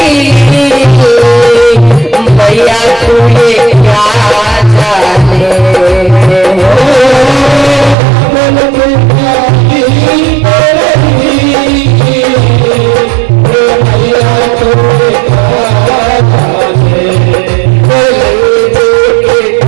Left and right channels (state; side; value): drops out; left; at 8.0 s